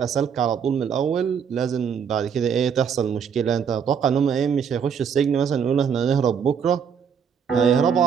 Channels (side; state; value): left; quieter; 7.2 dB